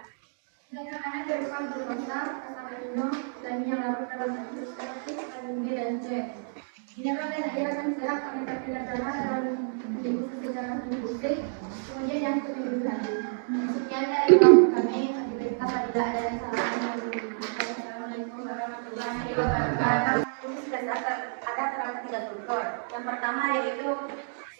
Zat makanan berupa glukosa, asam amino, dan yang larut dalam bentuk seperti vitamin B dan C. Mineral dan air akan diserap oleh kapillar darah dalam didifusi secara difusi, kemudian yang lebih lanjut. Sekian dari kelompok kami. Apabila ada yang salah, Assalamualaikum warahmatullahi wabarakatuh. Usus besar ada terdapat 3 struktur. Yang pertama yaitu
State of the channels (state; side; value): silent; left; digital silence